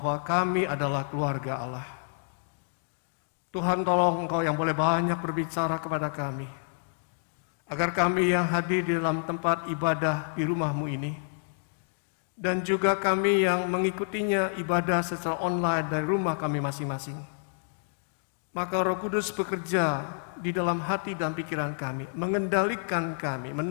kami adalah keluarga Allah. Tuhan, tolong Engkau yang boleh banyak berbicara kepada kami. Agar kami yang hadir di dalam tempat ibadah di rumah-Mu ini, dan juga kami yang mengikutinya ibadah secara online dari rumah kami masing-masing, maka Roh Kudus bekerja di dalam hati dan pikiran kami, mengendalikan kami,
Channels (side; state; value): right; silent; digital silence